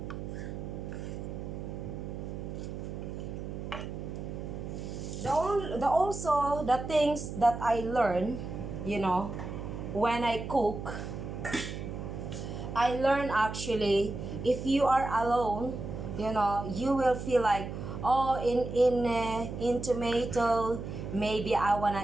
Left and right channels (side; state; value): right; noise; hum, 7 dB below the sound